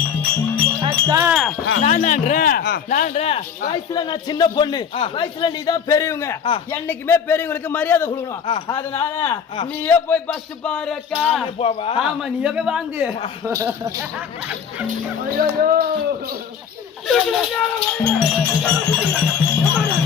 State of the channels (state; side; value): quieter; right; 7.3 dB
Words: வயசுல நான் சின்ன பொண்ணு, வயசுல நீதான் பெரியவங்க. என்னைக்குமே பெரியவங்களுக்கு மரியாதை கொடுக்கணும். அதனால நீயே போய் பஸ் பாரு அக்கா. ஆமா நீயே போய் வாங்கு.